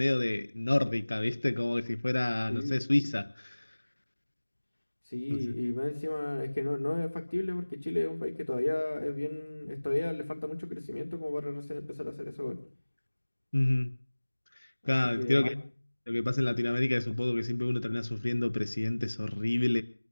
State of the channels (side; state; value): both; inverted; correlation -1.00